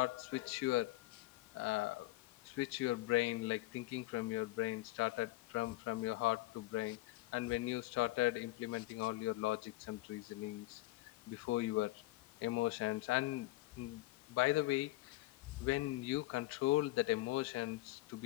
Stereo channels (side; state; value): right; quieter; 18.1 dB